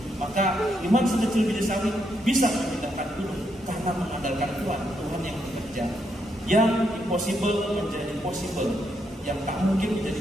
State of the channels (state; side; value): normal; both; correlation 0.79